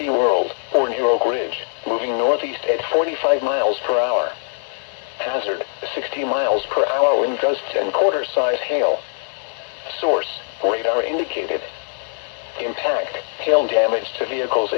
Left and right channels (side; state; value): right; silent; digital silence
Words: or near Oak Ridge, moving northeast at 45 miles per hour. Hazard, 60 miles per hour wind gusts and quarter-size hail. Source, radar indicated. Impact, hail damage to vehicles